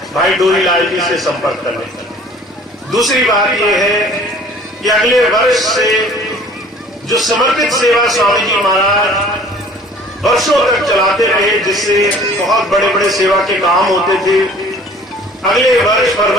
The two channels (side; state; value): both; normal; correlation 0.50